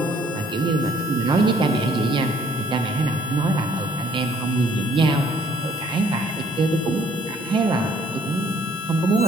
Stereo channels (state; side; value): normal; both; correlation 0.62